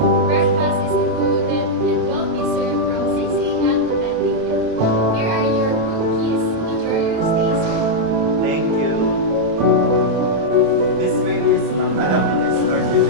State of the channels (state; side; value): late; left; 27 ms